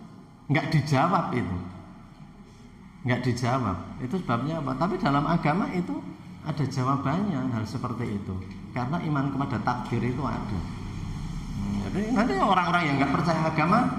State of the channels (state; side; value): identical; both; correlation 1.00